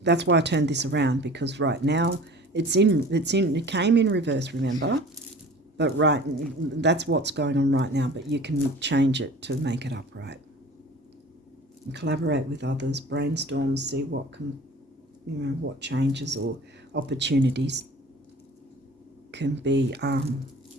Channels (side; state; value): both; normal; correlation 0.43